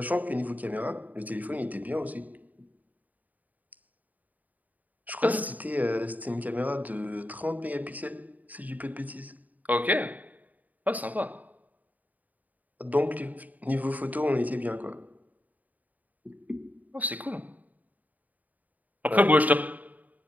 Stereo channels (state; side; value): late; left; 0.077 ms